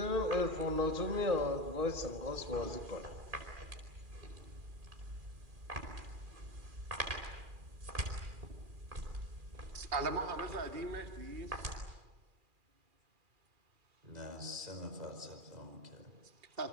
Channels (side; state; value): left; late; 2.4 ms